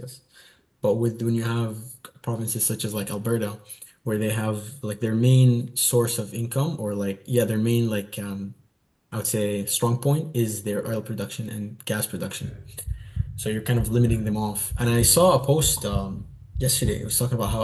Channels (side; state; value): both; identical; correlation 1.00